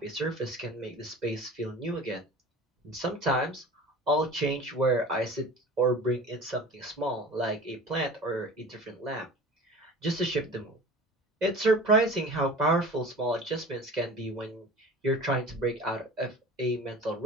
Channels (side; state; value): both; normal; correlation 0.39